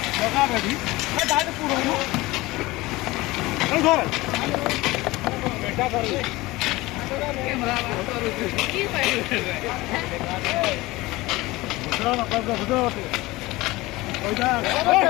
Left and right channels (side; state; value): right; quieter; 20.2 dB